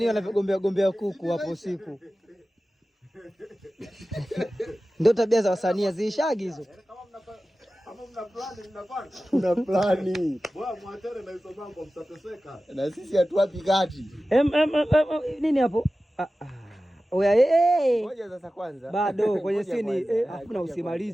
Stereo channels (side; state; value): both; normal; correlation 0.95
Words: wanavyogombea kuku hapo usiku. Ndio tabia za wasanii ziishagi hizo. Kama mna plani mnafanya. Kuna plani. Bwana mwatere na hizo mambo mtateseka. Na sisi hatuwapi kati. Nini hapo? Oya Ngoja sasa kwanza. Bado kwenye sini hakuna